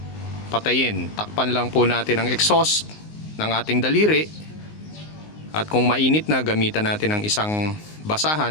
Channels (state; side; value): late; right; 19 ms